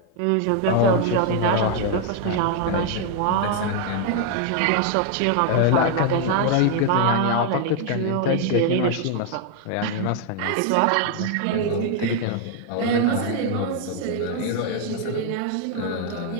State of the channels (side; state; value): both; different; correlation 0.00